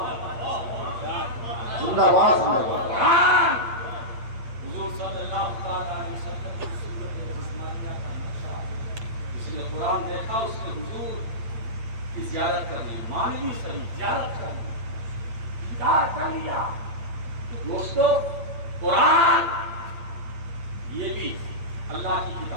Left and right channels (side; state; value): left; late; 8.6 ms